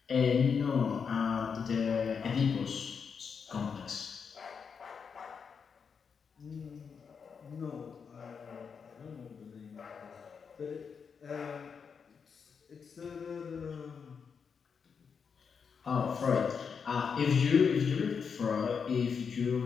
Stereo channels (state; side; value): quieter; right; 6.2 dB